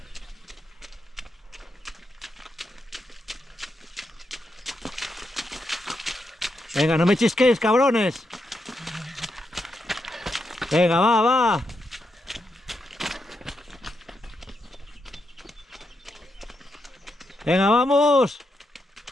Venga, no me chisquéis, cabrones. Venga, va, va. Venga, vamos.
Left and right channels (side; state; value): both; normal; correlation 0.83